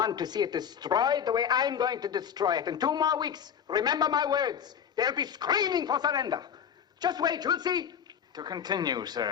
to see it destroyed the way I'm going to destroy it. In 2 more weeks, remember my words, they'll be screaming for surrender. Just wait, you'll see. To continue,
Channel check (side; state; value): right; quieter; 8.2 dB